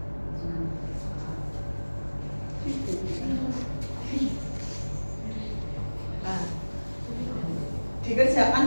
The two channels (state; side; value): inverted; both; correlation -1.00